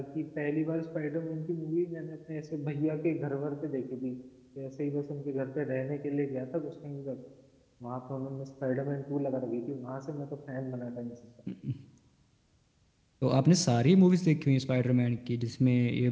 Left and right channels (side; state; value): both; identical; correlation 1.00